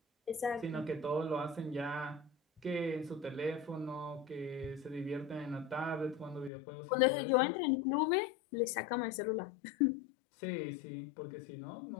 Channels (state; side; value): drops out; right; at 6.5 s